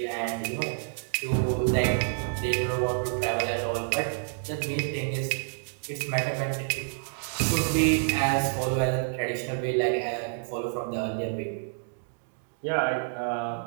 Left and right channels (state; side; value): silent; left; digital silence